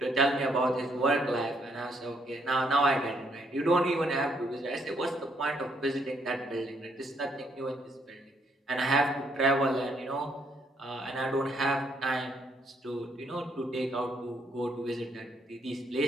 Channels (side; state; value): both; normal; correlation 0.71